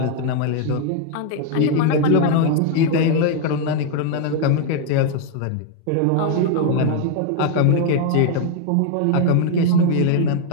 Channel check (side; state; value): both; different; correlation 0.00